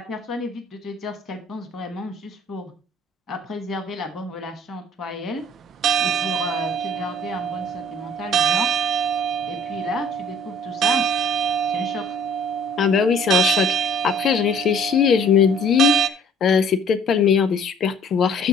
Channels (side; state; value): both; normal; correlation 0.56